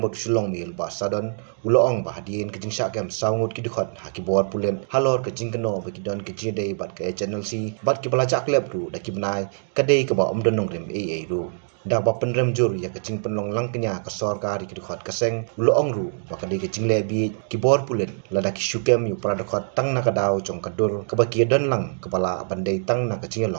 sulong mil ba sadon uloong bahadien kejing syakem saungut kidikhat hakibor pulen halor kejing keno bakidon kejidei bat ka HNLC bat kibelajak lep ru dakibnai kadei ke ba omdon nongrem ru dak ba penrem jur ya kejing penlong langkenya ka sorkar kidikhat kaseng uloong ru bakadei kejing lebi kibor pulen ladak syukem yu pradakhat tang nakadau jong kadur ke bakidon lang kepala bandai tang nak kejing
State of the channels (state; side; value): silent; left; digital silence